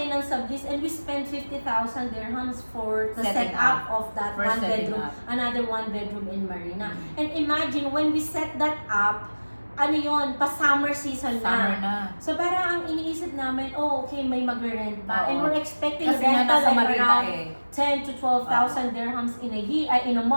ng sublease and we spent 50,000 dirhams for the Setting setup up. of that First one setting bedroom, up. another one bedroom in Marina. And imagine when we set that up, ano yon, pa summer season summer na. na. So parang ang iniisip namin, oh okay, may magre-rent pa. Oo. And we're expecting Kasi nga rental nasa like Marina around eh. 10 to 12,000 dirhams in a year, in a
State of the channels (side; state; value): both; inverted; correlation -1.00